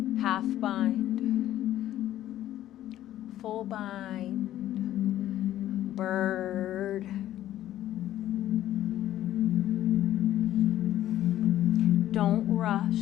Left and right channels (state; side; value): quieter; right; 13.1 dB